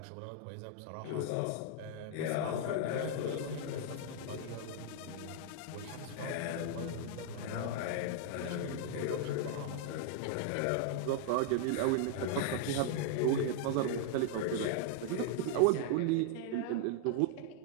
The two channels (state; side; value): different; both; correlation -0.01